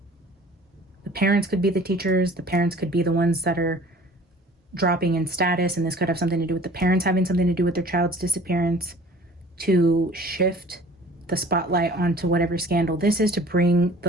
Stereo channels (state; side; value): normal; both; correlation 0.48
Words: The parents could be the teachers. The parents could be the ones that are dropping in status, and this could have something to do with the parents having something to do with their child's disappearance, to shift the spotlight onto whatever scandal this is, to bring